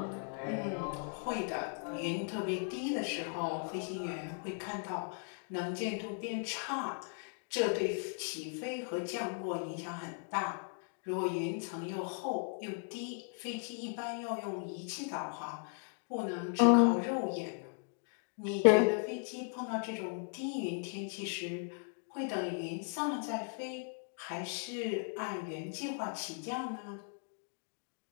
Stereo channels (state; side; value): silent; right; 53 dB below the other